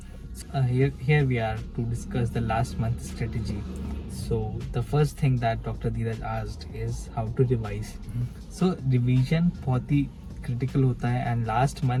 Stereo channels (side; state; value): both; identical; correlation 1.00